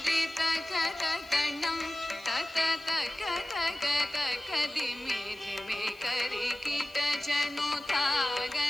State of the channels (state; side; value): noise; left; hiss, 26 dB below the sound